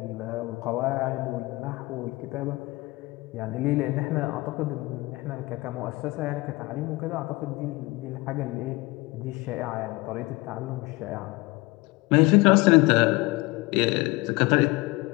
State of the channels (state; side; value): quieter; right; 22.7 dB